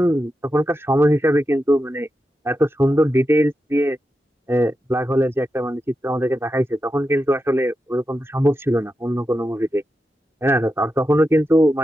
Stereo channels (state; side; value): normal; both; correlation 0.89